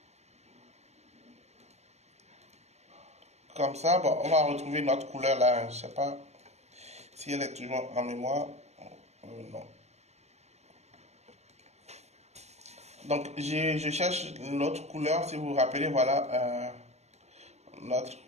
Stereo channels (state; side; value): late; left; 0.32 ms